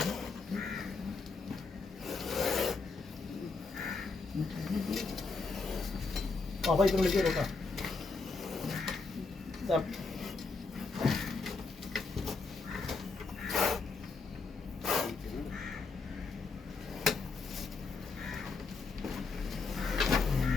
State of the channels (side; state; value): right; quieter; 4.2 dB